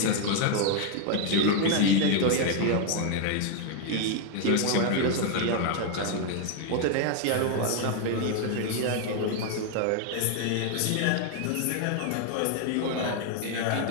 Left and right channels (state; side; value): different; both; correlation 0.01